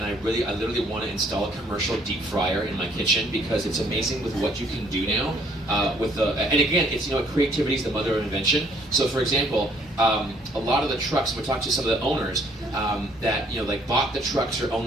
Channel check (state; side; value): normal; both; correlation 0.63